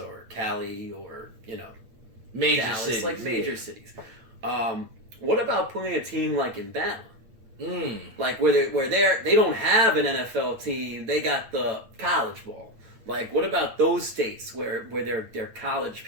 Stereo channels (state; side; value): late; left; 8.8 ms